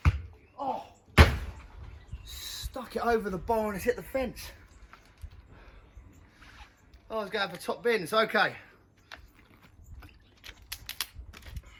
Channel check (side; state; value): both; identical; correlation 1.00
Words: Oh! Stuck it over the bar and it's hit the fence. Oh, I was going for top bins. Okay.